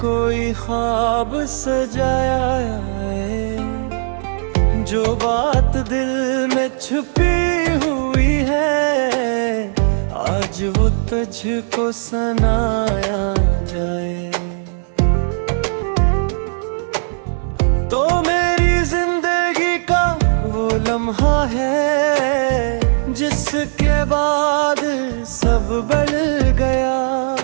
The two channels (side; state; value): left; silent; 64 dB below the other